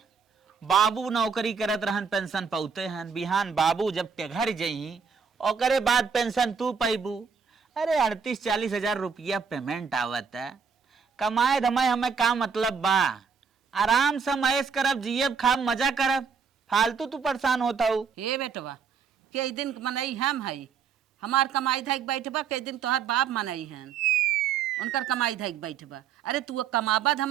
बाबू नौकरी करत रहन, पेंशन पौते हन। बिहान बाबू जब टेघर जही ओकरे बाद पेंशन तू पैबू। अरे 38-40 हजार रुपया पेमेंट आवत है। कमाए धमाए हमें का मतलब बा। आराम से मैस करब, जियब खाब, मजा करब। फालतू तू परेशान होता हूँ। हे बेटवा कई दिन मनई हम है, हमार कमाई धक बैठबा, कई दिन तोहार बाप मनई हन, उनकर कमाई धक बैठबा। अरे तू कमाबा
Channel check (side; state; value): left; quieter; 6.1 dB